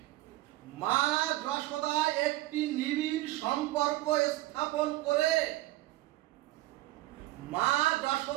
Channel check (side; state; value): left; quieter; 17.3 dB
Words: মা যশোদা একটি নিবিড় সম্পর্ক স্থাপন করে মা